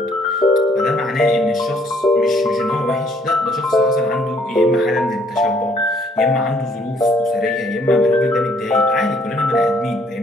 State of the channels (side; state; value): both; normal; correlation 0.65